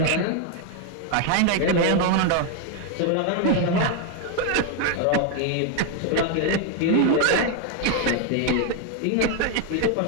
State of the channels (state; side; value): different; both; correlation 0.01